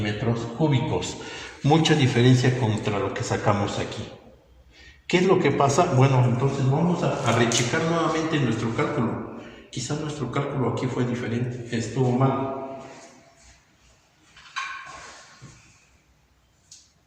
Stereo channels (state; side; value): identical; both; correlation 1.00